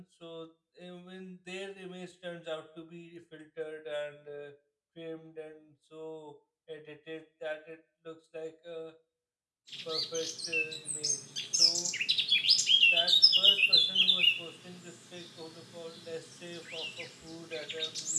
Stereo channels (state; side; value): identical; both; correlation 1.00